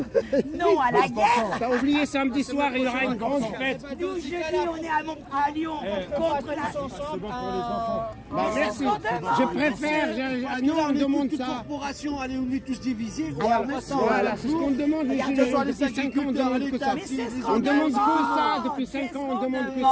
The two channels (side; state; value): both; identical; correlation 1.00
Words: non à la guerre. T'as oublié, samedi soir, il y aura une grande fête. Nous, jeudi, on est à Lyon contre la... Bah, merci. Je préfère, nous on demande ça. Corporation, allez, on est tous divisés. Voilà, c'est ce qu'on demande les gilets jaunes. Depuis 5 ans, on demande que ça. Mais c'est ce On qu'on demande que demande. ça. Depuis 5 ans, on demande que